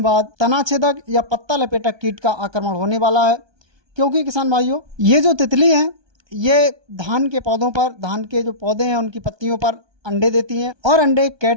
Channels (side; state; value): left; late; 1.2 ms